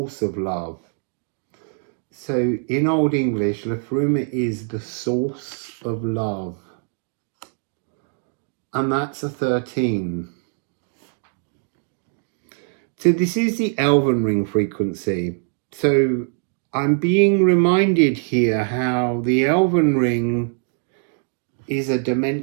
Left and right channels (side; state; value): left; silent; 56 dB below the other